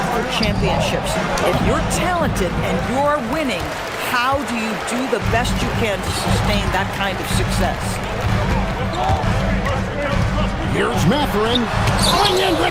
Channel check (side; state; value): both; identical; correlation 1.00